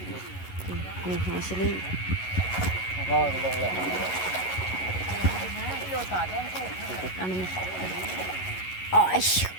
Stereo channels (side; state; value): right; late; 11 ms